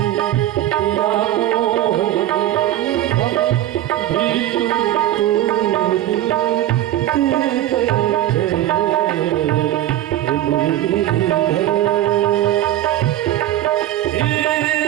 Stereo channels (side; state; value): left; quieter; 13.3 dB